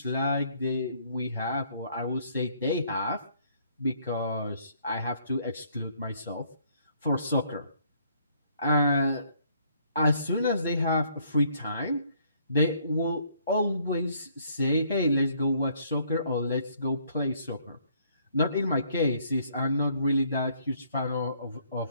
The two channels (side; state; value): both; inverted; correlation -0.65